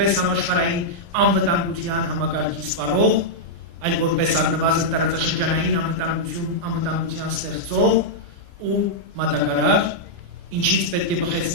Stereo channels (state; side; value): late; left; 29 ms